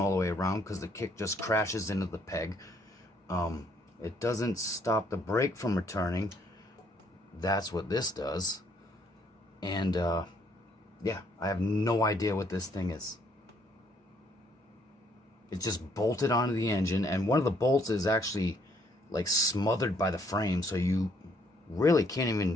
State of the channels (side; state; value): both; normal; correlation 0.68